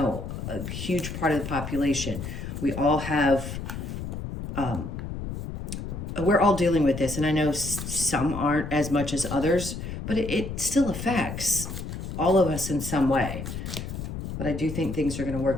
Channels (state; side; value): noise; left; rumble, 7 dB below the sound